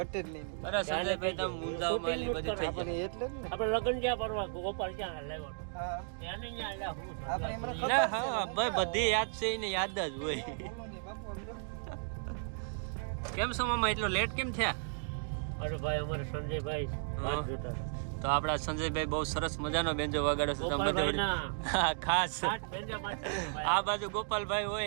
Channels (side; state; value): left; silent; digital silence